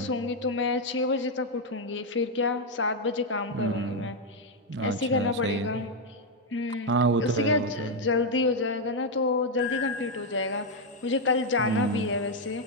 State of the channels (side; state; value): both; normal; correlation 0.01